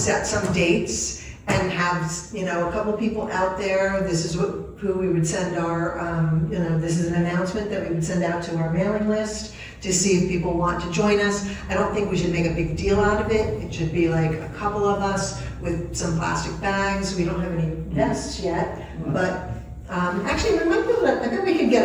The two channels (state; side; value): identical; both; correlation 1.00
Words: some dates and have, a couple people out there. This is who we would send our, this is an announcement that we would send out to our mailing list to see if people want to join us. I don't think we should make a big deal out of it. It should be like a couple of us with some plastic bags. We don't have any vests yet, but actually we might be able to, I bet we could